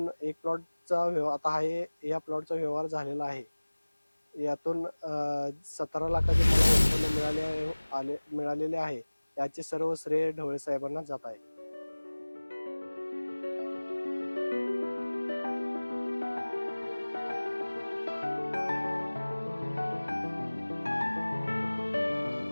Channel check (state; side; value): inverted; both; correlation -1.00